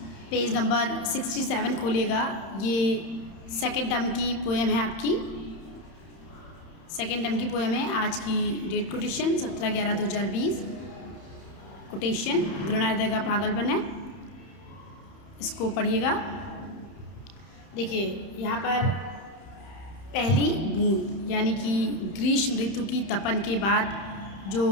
Page number 67 खोलिएगा। ये सेकेंड टर्म की पोएम है आपकी। सेकेंड टर्म की पोएम है। आज की डेट कोटेशन 17/11/2020। कोटेशन घृणाहृदय का पागलपन है। इसको पढ़िएगा। देखिए यहाँ पर पहली बूंद यानी कि ग्रीष्म ऋतु की तपन के बाद जो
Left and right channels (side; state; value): right; late; 31 ms